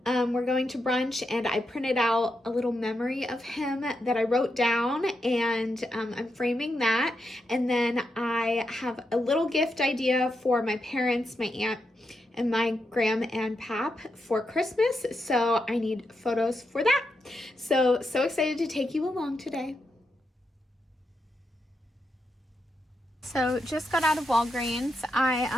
We're going to brunch, and I printed out a little memory of him that I wrote down, and I'm framing that. And then I have a little gift idea for my parents, my aunt, and my gram and pap for Christmas. So I need photos for that. So excited to take you along today. So just got out of Walgreens.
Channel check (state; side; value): normal; both; correlation 0.84